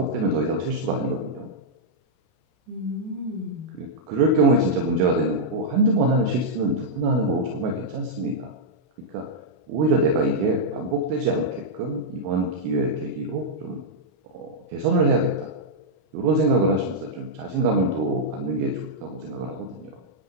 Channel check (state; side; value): late; left; 32 ms